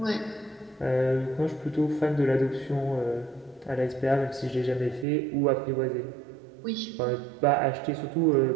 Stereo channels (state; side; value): drops out; left; at 5.1 s